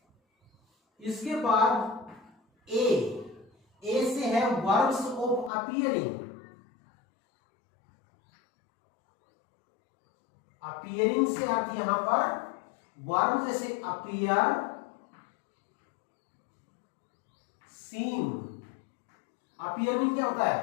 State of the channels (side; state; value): right; drops out; at 5.5 s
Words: इसके बाद ए से है वर्ब्स ऑफ अपीयरिंग। अपीयरिंग से अर्थ यहां पर वर्ब जैसे अपीयर, सीम। अपीयरिंग क्या होता